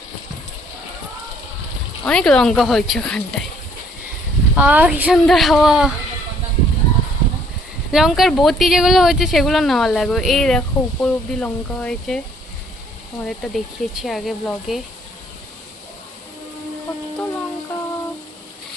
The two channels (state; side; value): normal; both; correlation 0.62